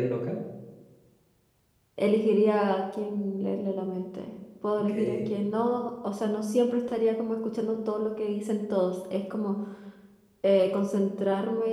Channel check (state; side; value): identical; both; correlation 1.00